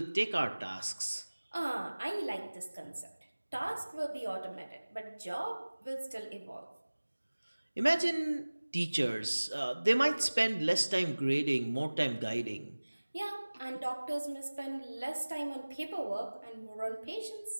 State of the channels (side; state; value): both; inverted; correlation -1.00